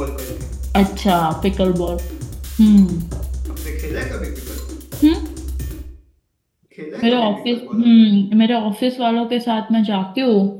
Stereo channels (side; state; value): both; identical; correlation 1.00